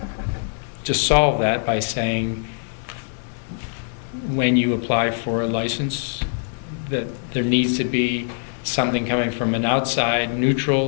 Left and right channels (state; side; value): silent; right; digital silence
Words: solve that by saying when you apply for a license that there needs to be something coming from an outside,